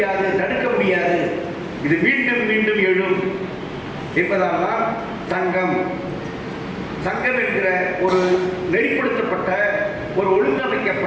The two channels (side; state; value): both; identical; correlation 1.00